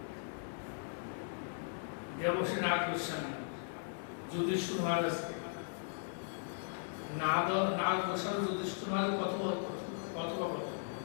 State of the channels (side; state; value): right; silent; digital silence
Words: দেবশ্রী নাথ গোস্বামী যুধিষ্ঠির মহারাজকে, নাথ গোস্বামী যুধিষ্ঠির মহারাজ কথোপকথন।